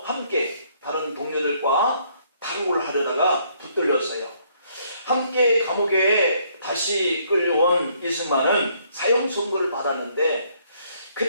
함께 다른 동료들과 탈옥을 하려다가 붙들렸어요. 함께 감옥에 다시 끌려온 이승만은 사형 선고를 받았는데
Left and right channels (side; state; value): both; inverted; correlation -0.67